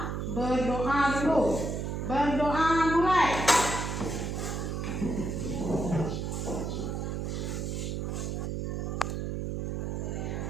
berdoa dulu. Berdoa mulai.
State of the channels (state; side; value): noise; right; hum, 2 dB below the sound